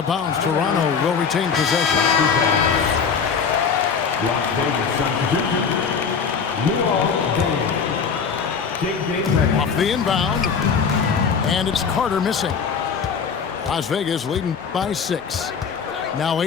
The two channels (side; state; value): right; quieter; 6.1 dB